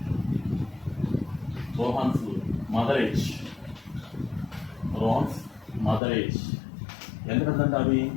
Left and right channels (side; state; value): right; drops out; at 6.0 s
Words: mother age ఎందుకంటే అవి